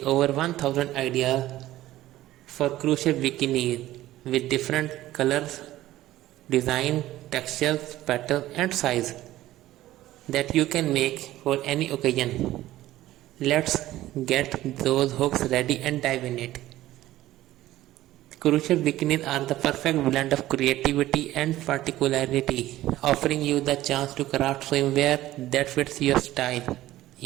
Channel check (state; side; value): quieter; left; 15.2 dB